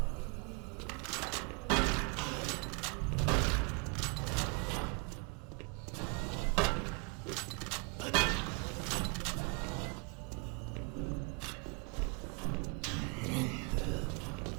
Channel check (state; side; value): quieter; left; 33.2 dB